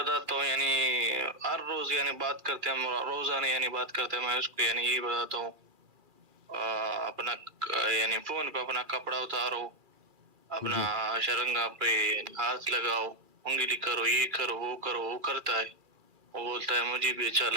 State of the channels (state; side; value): late; left; 2.4 ms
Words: ہوں، یعنی ہر روز یعنی بات کرتے ہیں، روزانہ یعنی بات کرتے ہیں. میں اس کو یعنی یہ بتاتا ہوں، اپنا یعنی فون پہ اپنا کپڑا اتارو، اپنا شرنگا پہ ہاتھ لگاؤ، انگلی کرو، یہ کرو، وہ کرو. وہ کرتا ہے، وہ بولتا ہے مجھے بھی اچھا